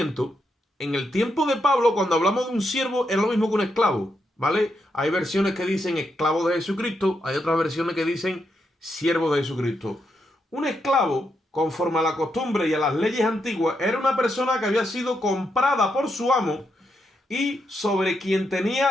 en el tiempo de Pablo, cuando hablamos de un siervo, es lo mismo que un esclavo, ¿vale? Hay versiones que dicen esclavo de Jesucristo, hay otras versiones que dicen siervo de Jesucristo. Un esclavo, conforme a la costumbre y a las leyes antiguas, era una persona que había sido comprada por su amo y sobre quien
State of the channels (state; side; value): normal; both; correlation 0.82